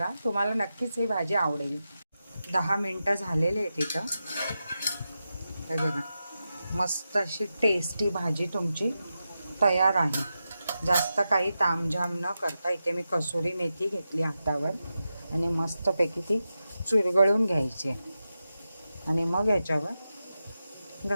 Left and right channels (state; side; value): inverted; both; correlation -0.90